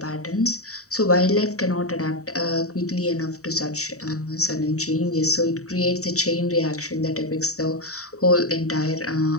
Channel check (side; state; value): right; late; 0.65 ms